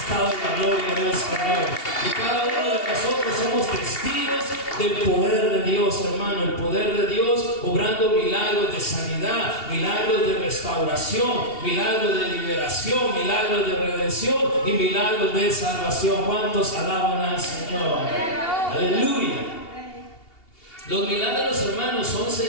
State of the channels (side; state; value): right; late; 2.8 ms